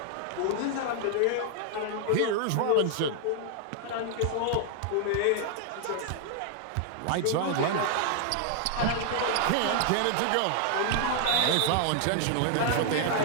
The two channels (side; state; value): both; different; correlation 0.00